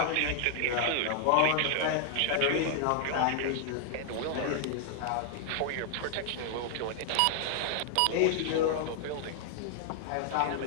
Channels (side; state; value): both; different; correlation 0.00